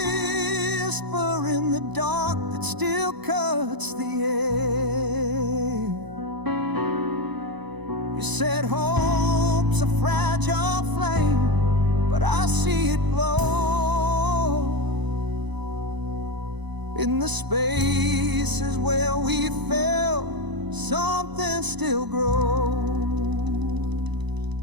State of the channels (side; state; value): left; late; 1.0 ms